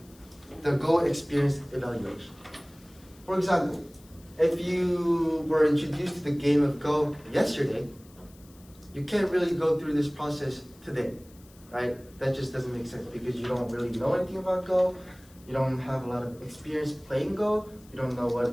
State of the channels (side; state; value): left; noise; hiss, 26 dB below the sound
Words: the Go experience evaluation. For example, if you were introduced to the game of Go yesterday, you can't really go through this process today, right? That just doesn't make sense, because you don't really know anything about Go, you don't have a lot of experience playing Go, you don't know what